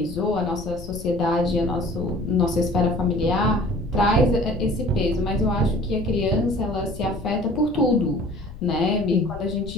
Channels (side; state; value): left; noise; rumble, 13 dB below the sound